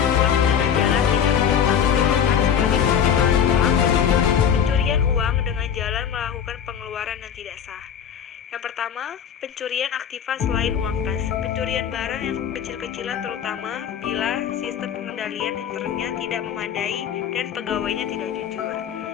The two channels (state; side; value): quieter; right; 8.3 dB